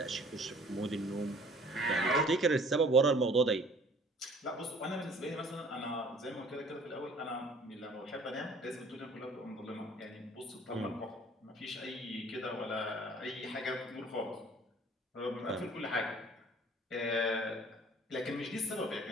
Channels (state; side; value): normal; both; correlation 0.53